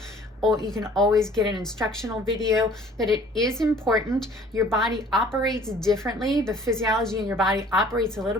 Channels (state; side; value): normal; both; correlation 0.53